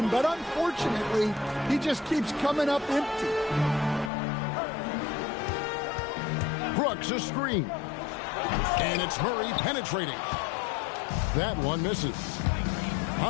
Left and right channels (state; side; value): drops out; right; at 4.1 s